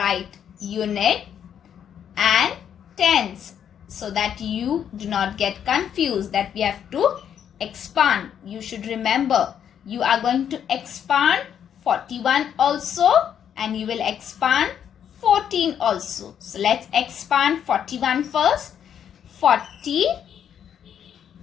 unit and tens so that you do not get confused that we have to expand. You should remember you are going to expand 41 also and you will expand 14 also. So let's expand 41 first. 40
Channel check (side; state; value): right; quieter; 8.9 dB